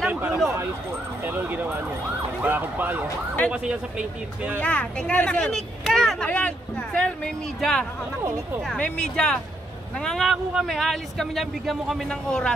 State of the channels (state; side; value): normal; both; correlation 0.75